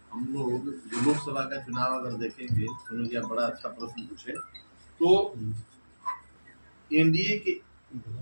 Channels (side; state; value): both; inverted; correlation -1.00